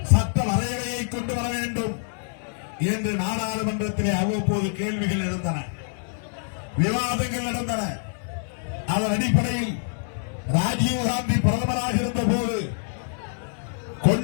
சட்ட வரையறையை கொண்டு வர வேண்டும் என்று நாடாளுமன்றத்திலே அவ்வப்போது கேள்விகள் எழுந்தன, விவாதங்கள் நடந்தன. அதன் அடிப்படையில் ராஜீவ்காந்தி பிரதமராக இருந்த போது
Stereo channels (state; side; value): silent; right; 61 dB below the other